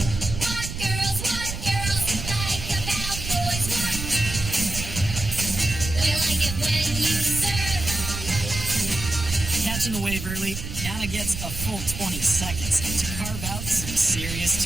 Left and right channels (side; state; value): right; noise; rumble, 7 dB below the sound